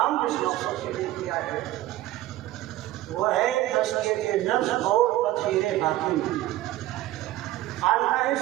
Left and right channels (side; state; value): left; quieter; 15.6 dB